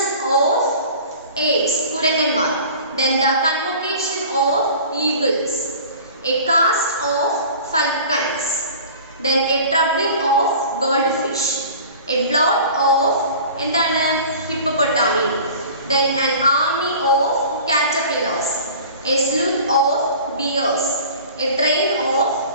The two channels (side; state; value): both; inverted; correlation -0.42